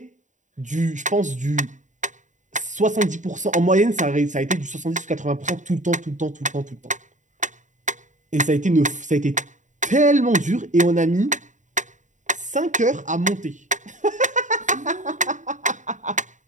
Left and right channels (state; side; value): late; left; 0.36 ms